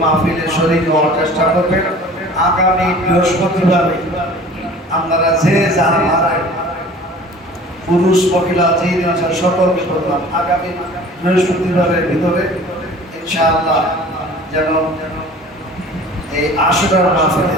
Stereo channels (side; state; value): both; normal; correlation 0.45